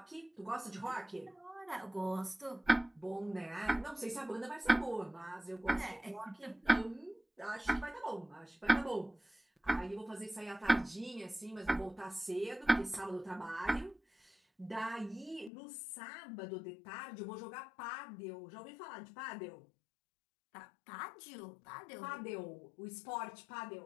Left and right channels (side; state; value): right; drops out; at 15.5 s